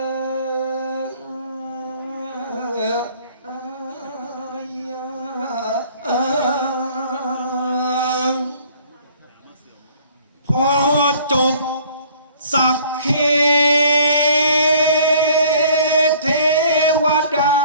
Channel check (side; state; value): both; inverted; correlation -0.55